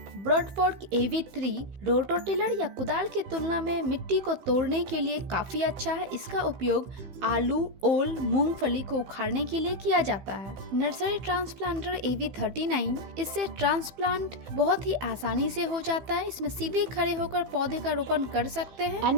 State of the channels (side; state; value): left; late; 16 ms